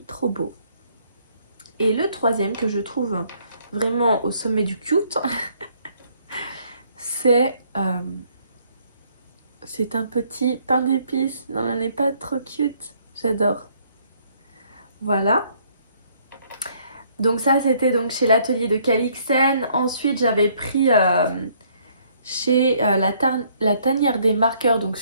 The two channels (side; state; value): both; inverted; correlation -0.65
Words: trop beau. Et le troisième que je trouve vraiment au sommet du cute, c'est un petit pain d'épices. Non, elle n'est pas trop cute. J'adore. Voilà. Donc ça, c'était donc chez l'atelier de Calixen. Ensuite, j'avais pris chez la tanière des marqueurs, donc